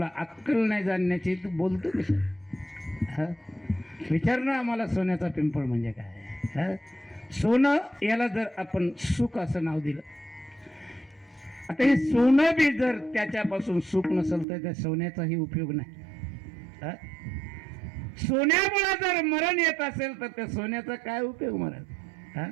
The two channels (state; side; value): drops out; left; at 14.5 s